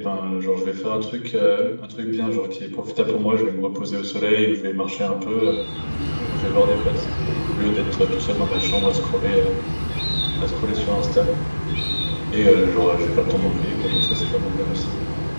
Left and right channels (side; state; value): both; inverted; correlation -1.00